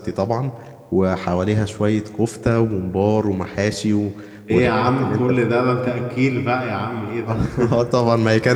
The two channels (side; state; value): both; identical; correlation 1.00